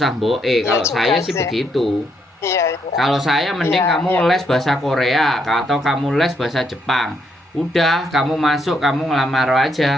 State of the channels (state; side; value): normal; both; correlation 0.75